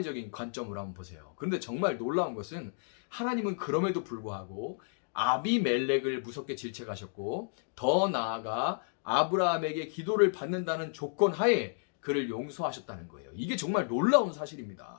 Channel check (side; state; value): right; silent; digital silence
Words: 관점으로 한번 보세요. 그런데 정말 놀라운 것은 하나님은 그럼에도 불구하고 아비멜렉을 무섭게 질책하셨고 더 나아가 아브라함에게 기도를 받는다는 조건 하에 그를 용서하셨다는 거예요. 이게 정말 놀라운